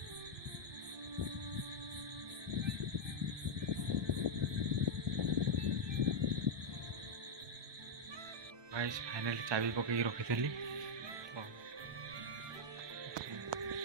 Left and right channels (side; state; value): left; late; 1.2 ms